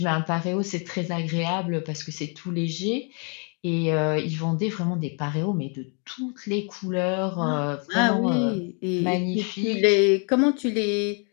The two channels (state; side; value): quieter; right; 38.5 dB